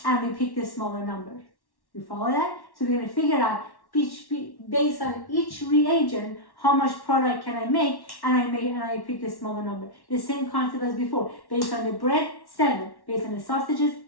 And we pick the smaller number. You follow that? So we're going to figure out, based on each reagent, how much product can I make? And I pick the smaller number. The same concept as before. Based on the bread, 7. Based on the sausages,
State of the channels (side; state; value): right; late; 1.1 ms